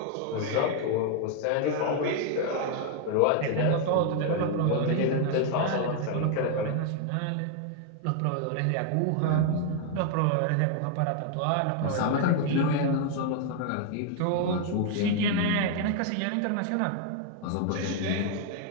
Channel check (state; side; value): different; both; correlation 0.00